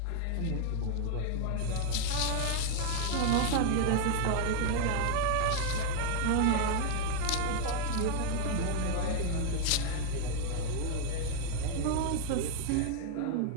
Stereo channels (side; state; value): both; different; correlation 0.00